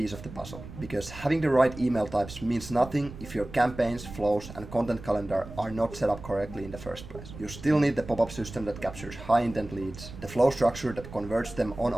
of the puzzle. Because having the right email types means nothing if your campaigns, flows, and content calendar are not set up correctly in the first place. You still need the pop-up system that captures high intent leads, the flow structure that converts them on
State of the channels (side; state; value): right; noise; rumble, 14 dB below the sound